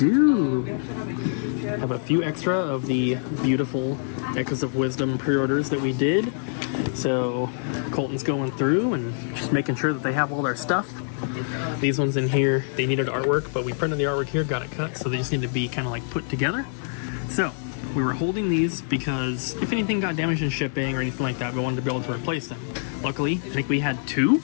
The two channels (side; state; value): right; silent; 57 dB below the other